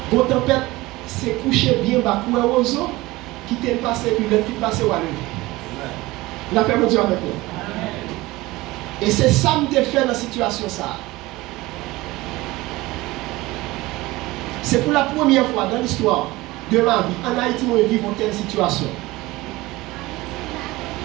Bon tempête, c'est coucher bien bas pour un oiseau qui t'est passé puis le fit passé ou à lever. La paix de Dieu avec nous. Et c'est ça que je fait dans la situation ça. C'est pour la première fois dans l'histoire de ma vie, en Haïti, nous vivons telle situation.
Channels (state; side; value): quieter; left; 19.9 dB